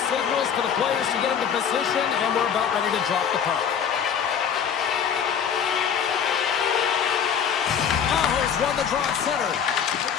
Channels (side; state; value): right; quieter; 7.7 dB